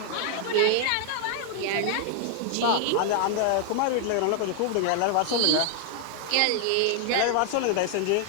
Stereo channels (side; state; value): both; different; correlation 0.00